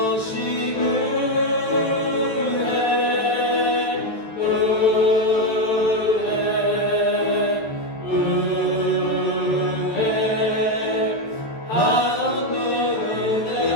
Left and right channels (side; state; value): right; late; 13 ms